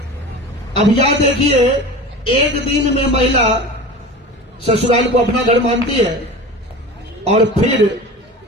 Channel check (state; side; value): normal; both; correlation 0.33